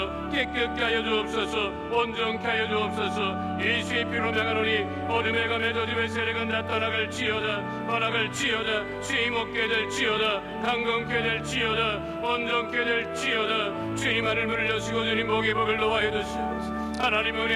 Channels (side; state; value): both; identical; correlation 1.00